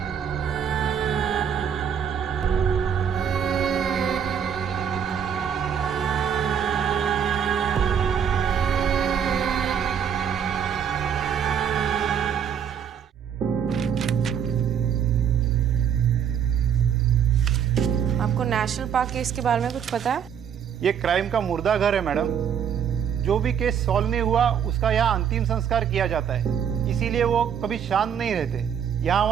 आपको नेशनल पार्क केस के बारे में कुछ पता है? ये क्राइम का मुर्दा घर है मैडम। जो भी केस सॉल्व नहीं हुआ उसका यहाँ अंतिम संस्कार किया जाता है, इसीलिए वो कभी शांत नहीं रहते, यहाँ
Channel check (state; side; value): quieter; left; 8.2 dB